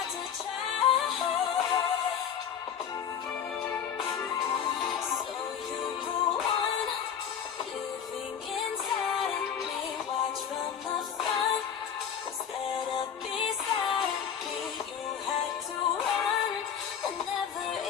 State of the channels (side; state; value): right; quieter; 8.0 dB